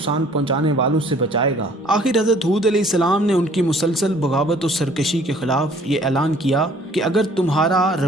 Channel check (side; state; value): both; normal; correlation 0.56